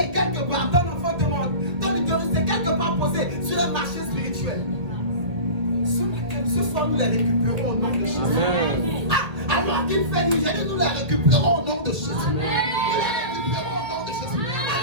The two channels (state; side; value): late; left; 1.8 ms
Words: quelque part, ton enfant demande, ton utérus est quelque part posé sur un marché spirituel. Ce soir, nous les récupérons au nom de Jésus. Alors qu'il fait nous aider, nous les récupérons au nom de Jésus. Nous les récupérons au nom de Jésus.